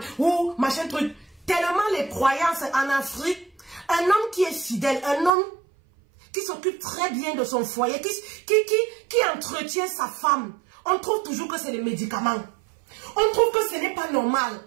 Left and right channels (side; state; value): left; drops out; at 5.3 s